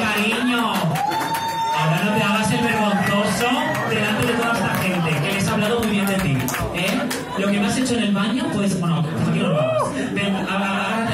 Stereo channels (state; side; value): identical; both; correlation 1.00